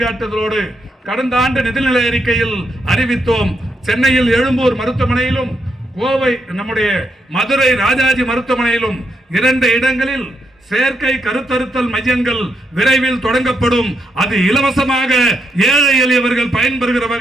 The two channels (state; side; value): normal; both; correlation 0.80